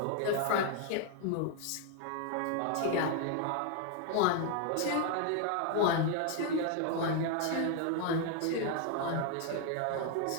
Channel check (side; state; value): both; different; correlation 0.01